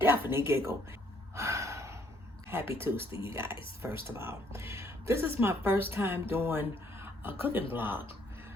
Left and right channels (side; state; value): both; normal; correlation 0.66